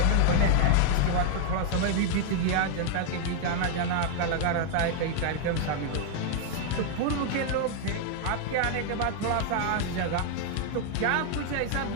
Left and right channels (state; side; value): different; both; correlation 0.00